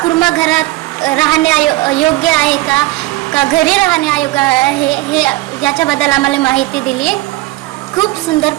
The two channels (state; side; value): quieter; left; 19.0 dB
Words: कुर्मा घरात राहणे योग्य आहे का घरी राहणे अयोग्य आहे हे याच्याबद्दल आम्हाला माहिती दिली. खूप सुंदर